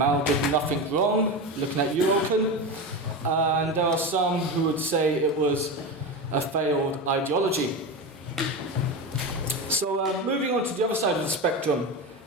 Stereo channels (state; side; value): normal; both; correlation 0.21